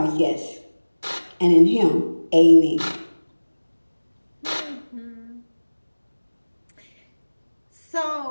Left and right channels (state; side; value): inverted; both; correlation -1.00